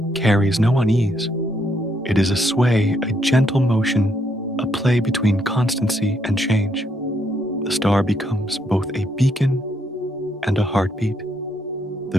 carries no unease. It is a sway, a gentle motion, a play between constancy and change. The star becomes both a beacon and a heartbeat. The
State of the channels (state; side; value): normal; both; correlation 0.74